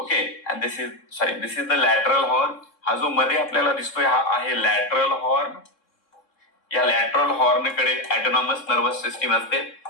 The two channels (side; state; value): right; late; 3.7 ms